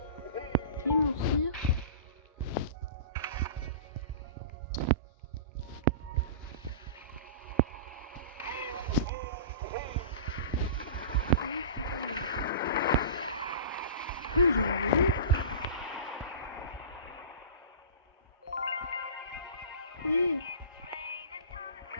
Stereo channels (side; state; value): both; inverted; correlation -0.34